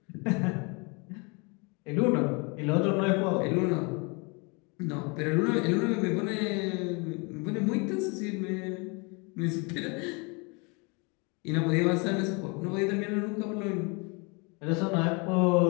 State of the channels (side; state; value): right; quieter; 30.9 dB